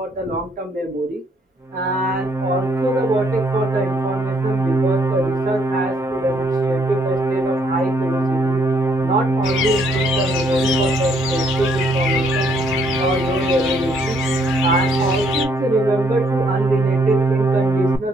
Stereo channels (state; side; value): normal; both; correlation 0.68